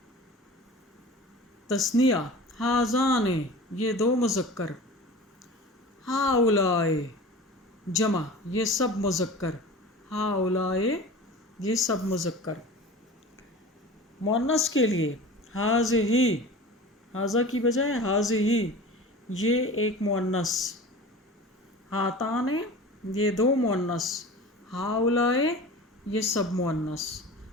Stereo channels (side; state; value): both; normal; correlation 0.37